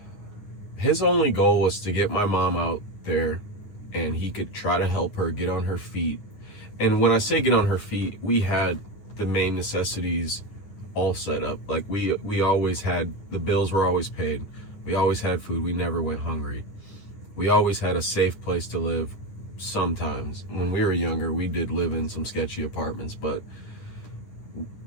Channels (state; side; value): late; right; 10 ms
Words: His only goal was to get my mom out there and he could try to help her get on her feet. And when I say get on her feet, we had the main necessities all set up. Like we always had, the bills were always paid. We always had food. We never went hungry. We always had a safe place to live. Sometimes when we were younger, we did live in some sketchy apartments, but